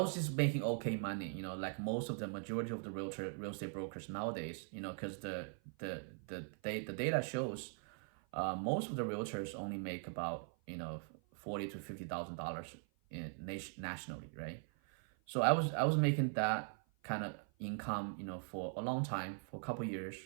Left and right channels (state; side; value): silent; left; 50 dB below the other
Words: just making okay money, like most of the majority of the real estate brokers nowadays, because the data shows most of the realtors only make about $40,000 to $50,000 nationally, right? So I was making that kind of income, for a long time, for a couple years,